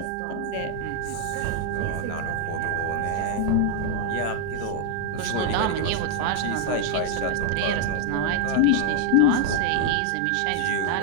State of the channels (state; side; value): different; both; correlation 0.00